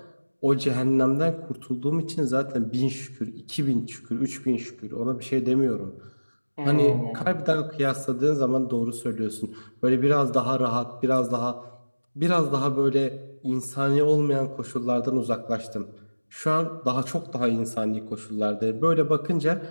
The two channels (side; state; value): both; inverted; correlation -1.00